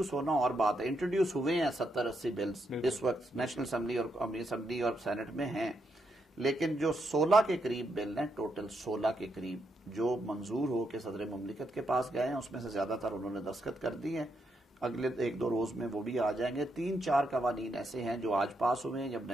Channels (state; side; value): normal; both; correlation 0.80